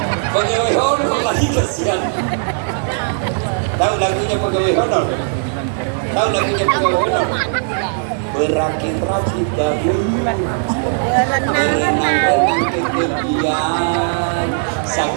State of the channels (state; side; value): silent; left; digital silence